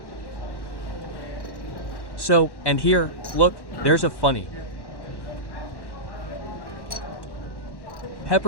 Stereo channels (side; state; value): right; late; 1.1 ms